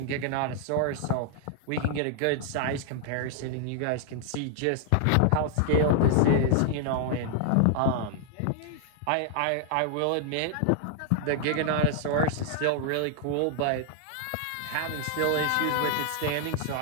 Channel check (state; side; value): different; both; correlation 0.00